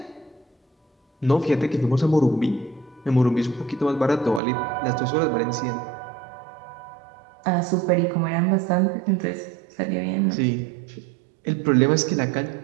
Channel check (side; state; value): left; drops out; at 4.4 s